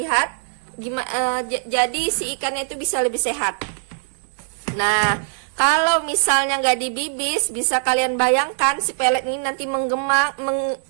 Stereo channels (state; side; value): silent; left; 65 dB below the other